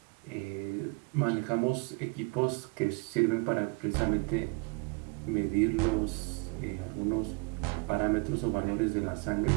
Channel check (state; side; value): quieter; left; 30.0 dB